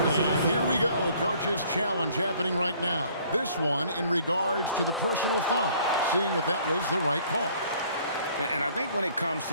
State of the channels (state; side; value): inverted; both; correlation -0.58